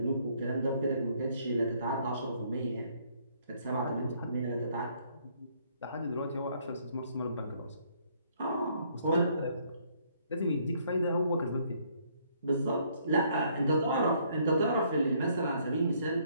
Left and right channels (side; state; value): both; inverted; correlation -0.66